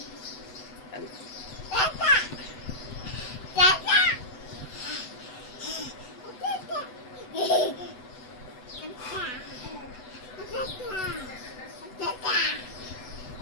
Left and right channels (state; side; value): late; right; 8.0 ms